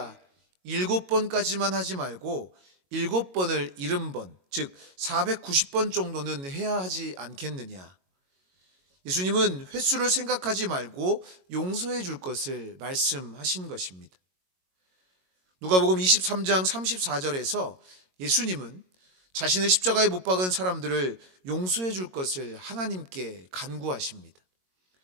7번까지만 하지 말고 7번을 70번, 즉 490번 정도는 해야 하지 않겠느냐. 예수님은 횟수를 생각하지 말고 용서해 줄 것을 말씀하신 것입니다. 누가복음 23장 34절에서 예수님은 자신의 십자가에 못 박은 사람들을 용서해 줄 것을 하나님께 간구하십니다.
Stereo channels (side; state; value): left; late; 22 ms